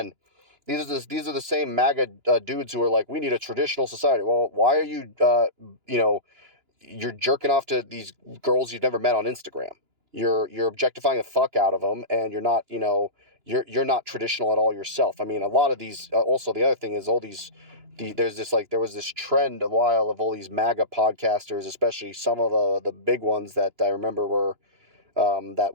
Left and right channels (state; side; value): late; left; 2.9 ms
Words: these are the same MAGA dudes who are like, we need a traditional society. Well, why are you, you're jerking off to these girls you've never met on Instagram? You're objectifying the fuck out of them, and you're not, you're not traditional at all yourself. I mean, a lot of these. Also, the other thing is all these. There was this trend a while of all these MAGA podcasters, especially some of the big ones that I remember were that